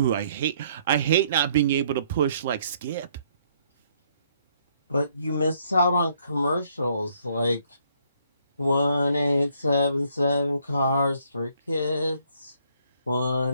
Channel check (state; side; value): inverted; both; correlation -0.67